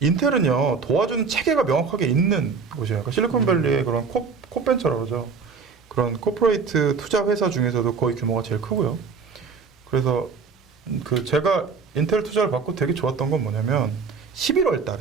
도와주는 체계가 명확하게 있는 곳이에요. 그러니까 실리콘밸리의 그런 코벤처라고 그러죠. 그런 코퍼레이트 투자 회사 중에서도 거의 규모가 제일 크고요. 그래서 그 제가 인텔 투자를 받고 되게 좋았던 건 뭐냐면 11월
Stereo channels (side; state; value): left; quieter; 5.3 dB